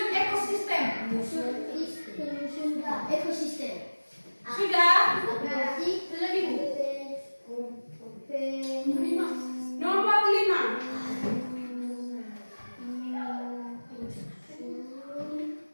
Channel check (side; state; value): both; inverted; correlation -1.00